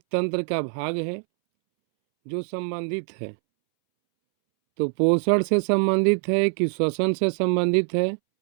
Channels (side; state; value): left; silent; 63 dB below the other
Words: तंत्र का भाग है जो संबंधित है। तो पोषण से संबंधित है कि श्वसन से संबंधित है